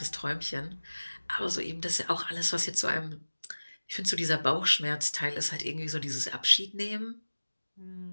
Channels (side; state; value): both; inverted; correlation -1.00